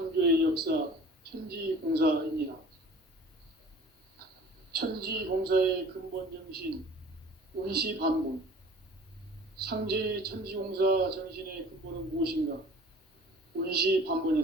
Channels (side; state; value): both; normal; correlation 0.46